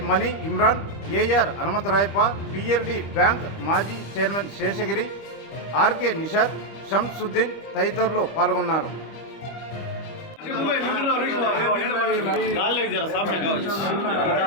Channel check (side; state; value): right; late; 25 ms